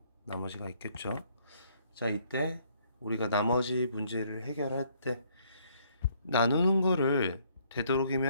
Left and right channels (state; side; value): inverted; both; correlation -0.66